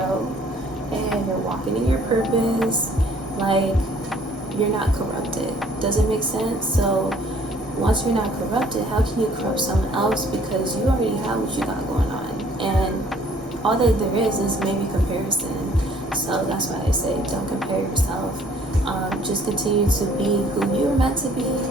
and you're walking in your purpose, like, you're not corrupted. Does it make sense? So once you're not corrupted, how can you corrupt someone else? Because you already have what you got going on, and all that there is maybe comparison. So that's why I say don't compare yourself. Just continue to be who you were meant to be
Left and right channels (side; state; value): both; normal; correlation 0.58